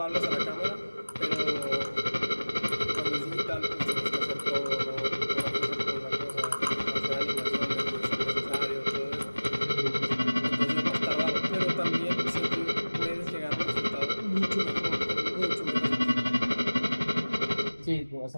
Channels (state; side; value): inverted; both; correlation -1.00